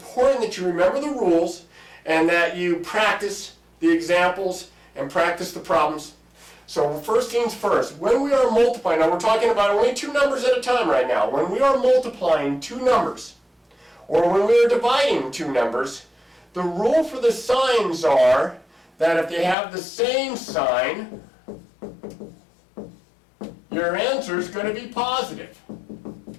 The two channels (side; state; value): right; drops out; at 19.6 s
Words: that you remember the rules and that you practice the examples and practice the problems. So first things first, when we are multiplying, now we're talking about only two numbers at a time right now. When we are multiplying two numbers, or when we are dividing two numbers, the rule for the signs are that if they have the same sign, your answer is going to be positive.